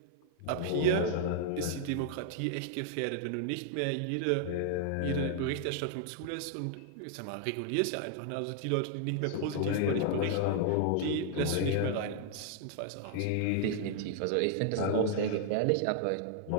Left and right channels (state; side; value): different; both; correlation 0.00